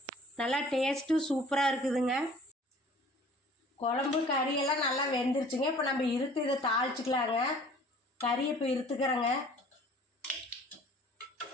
நல்லா டேஸ்ட்டும் சூப்பராக இருக்குதுங்க. குழம்பு கறியெல்லாம் நல்லா வெந்துருச்சுங்க. இப்போ நம்ம இதை தாளிச்சிக்கலாங்க. கறியை இப்போ இருத்துக்கிறேங்க.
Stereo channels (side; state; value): both; normal; correlation 0.50